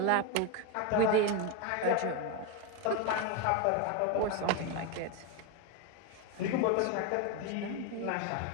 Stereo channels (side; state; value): both; different; correlation 0.02